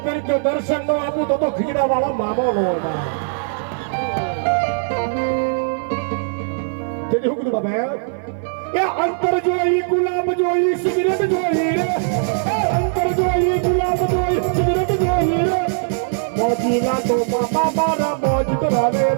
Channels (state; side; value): silent; left; 56 dB below the other